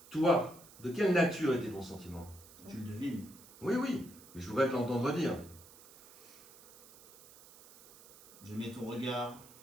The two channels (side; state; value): right; noise; hiss, 21 dB below the sound